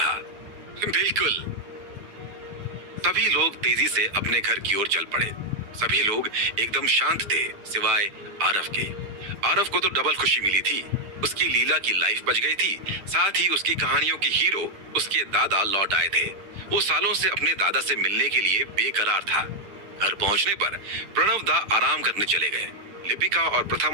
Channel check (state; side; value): late; left; 10 ms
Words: बिल्कुल। सभी लोग तेजी से अपने घर की ओर चल पड़े। सभी लोग एकदम शांत थे सिवाय आरव के। आरव को तो डबल खुशी मिली थी। उसकी लीला की लाइफ बच गई थी, साथ ही उसकी कहानियों की हीरो उसके दादा लौट आए थे। वो सालों से अपने दादा से मिलने के लिए बेकरार था। घर पहुंचने पर प्रणव दा आराम करने चले गए। लिपिका और